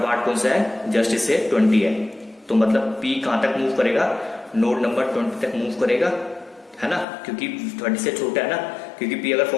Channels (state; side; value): drops out; right; at 7.1 s